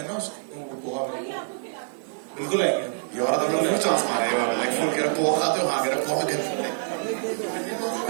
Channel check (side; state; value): left; silent; digital silence